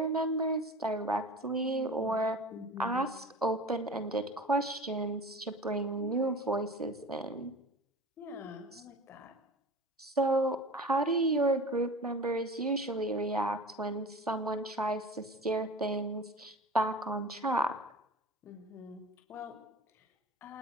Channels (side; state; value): both; normal; correlation 0.37